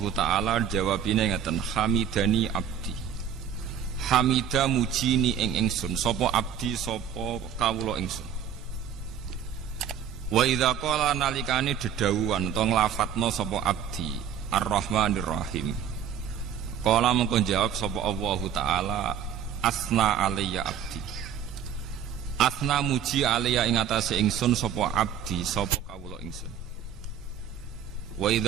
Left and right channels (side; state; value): left; quieter; 8.6 dB